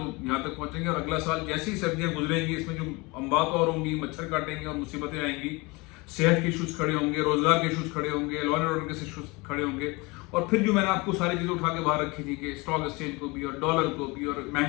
यहाँ तक पहुँचेंगे। और अगला साल जैसी सर्दियाँ गुजरेंगी, इसमें जो अम्बात और होंगी, मच्छर काटेंगे और मुसीबतें आएंगी, सेहत के इशूज़ खड़े होंगे, रोजगार के इशूज़ खड़े होंगे, लॉ एंड ऑर्डर के इशूज़ खड़े होंगे। और फिर जो मैंने आपको सारी चीज़ें उठा के बाहर रखी थी कि स्टॉक एक्सचेंज को भी, और डॉलर को भी, और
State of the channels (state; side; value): quieter; right; 25.4 dB